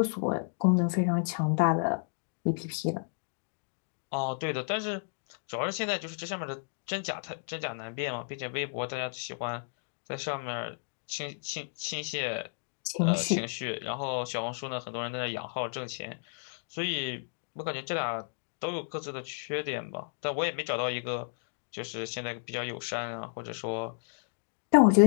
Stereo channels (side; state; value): right; silent; digital silence